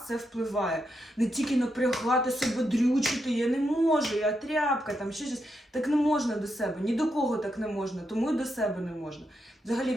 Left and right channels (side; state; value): both; normal; correlation 0.83